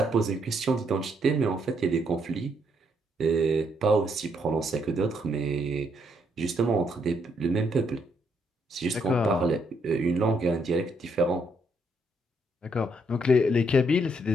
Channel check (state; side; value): normal; both; correlation 0.73